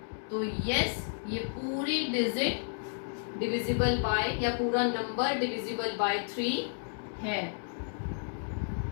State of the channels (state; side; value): silent; right; digital silence